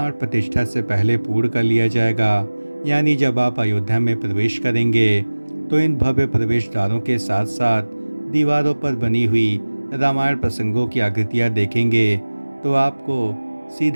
प्रतिष्ठा से पहले पूर्ण कर लिया जाएगा। यानी जब आप अयोध्या में प्रवेश करेंगे तो इन भव्य प्रवेश द्वारों के साथ साथ दीवारों पर बनी हुई रामायण प्रसंगों की आकृतियाँ देखेंगे तो आपको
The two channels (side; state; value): both; inverted; correlation -1.00